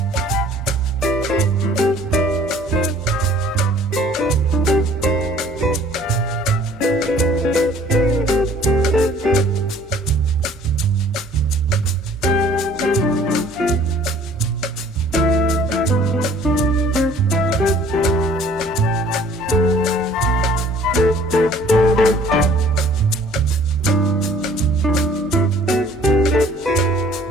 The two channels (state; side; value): normal; both; correlation 0.54